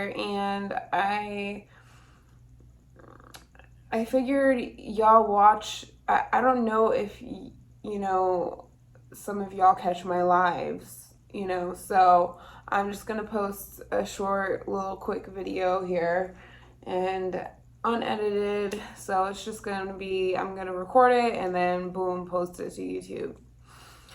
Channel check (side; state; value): both; identical; correlation 1.00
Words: and I figured y'all watch. I don't know if you know, some of y'all catch my lives, so I'm just gonna post a short little quick video here and unedited. So it's just gonna be, I'm gonna record it and then boom, post it to YouTube.